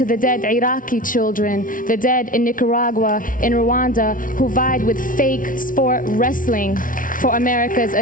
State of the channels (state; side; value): late; right; 0.39 ms